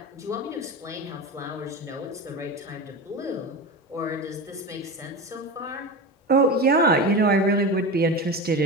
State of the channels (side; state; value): both; normal; correlation 0.24